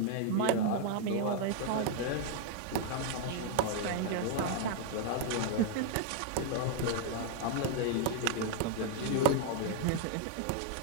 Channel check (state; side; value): different; both; correlation 0.00